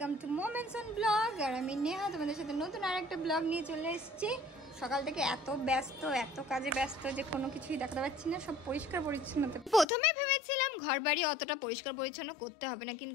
Welcome to moments on blog. আর আমি নেহা তোমাদের সাথে নতুন আরেকটা ব্লগ নিয়ে চলে এসেছি। সকাল থেকে এত ব্যস্ত, এত কাজে ব্যস্ত যে কোনো কিছুই দেখাতে পাচ্ছি না। সব পরিষ্কার পরিচ্ছন্নতা, প্রথমে ভেবেছিলাম ঘর বাড়ি অতটা পরিষ্কার পরিচ্ছন্ন করতে হবে না,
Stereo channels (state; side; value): drops out; right; at 9.9 s